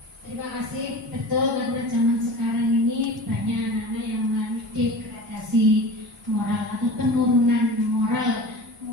Terima kasih. Betul, karena zaman sekarang ini banyak anak-anak yang mengalami degradasi moral atau penurunan moral.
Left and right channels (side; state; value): both; normal; correlation 0.35